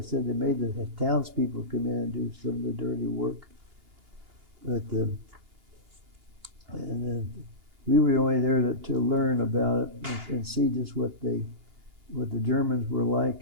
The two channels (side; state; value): left; late; 2.9 ms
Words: they made the townspeople come in and do some of the dirty work. But we were only there to learn about it and see just what the Germans were